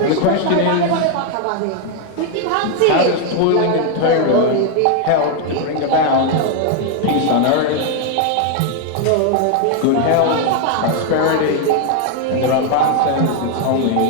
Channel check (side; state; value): both; different; correlation 0.01